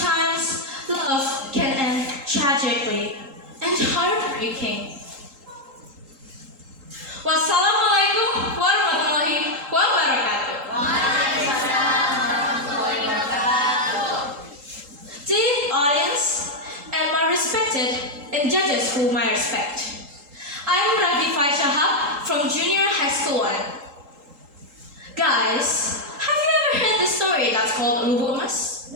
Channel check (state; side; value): late; left; 3.8 ms